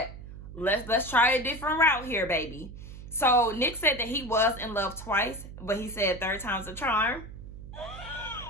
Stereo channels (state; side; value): noise; right; hum, 13 dB below the sound